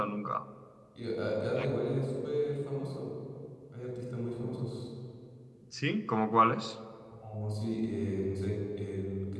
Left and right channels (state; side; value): identical; both; correlation 1.00